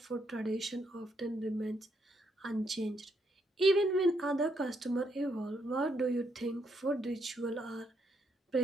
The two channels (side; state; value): both; normal; correlation 0.76